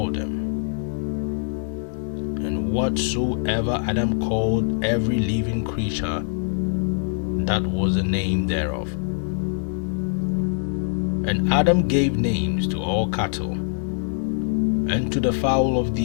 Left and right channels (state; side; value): silent; right; 63 dB below the other